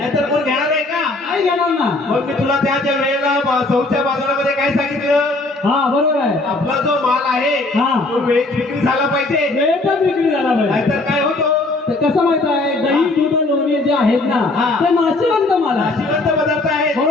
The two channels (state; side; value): quieter; right; 3.0 dB